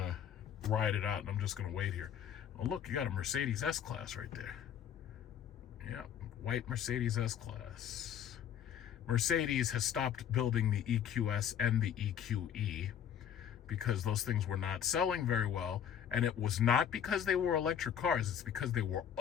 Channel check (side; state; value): right; quieter; 9.1 dB